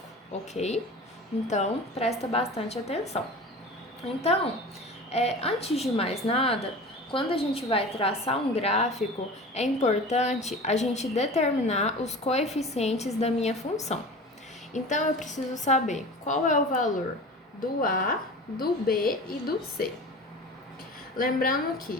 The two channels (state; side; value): normal; both; correlation 0.36